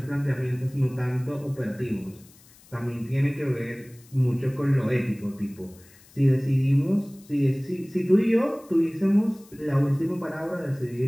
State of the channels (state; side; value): noise; left; hiss, 26 dB below the sound